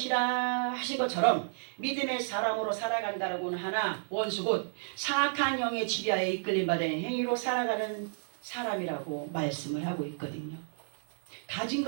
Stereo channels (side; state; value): left; silent; 57 dB below the other